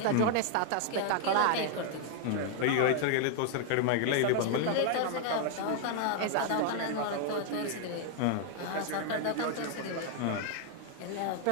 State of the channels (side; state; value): both; different; correlation 0.00